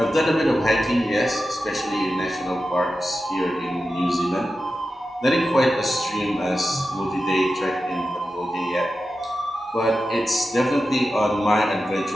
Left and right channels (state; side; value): normal; both; correlation 0.92